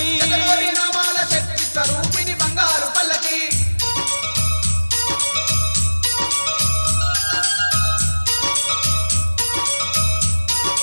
శతకోటి నామాల శక్తి స్వరూపిణి బంగారు పల్లకి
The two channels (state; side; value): inverted; both; correlation -1.00